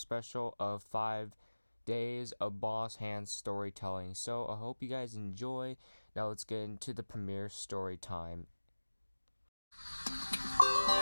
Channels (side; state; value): both; inverted; correlation -1.00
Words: of 5 days of Boss HANN storytelling. So I hope you guys enjoy. Now let's get into the premiere story time.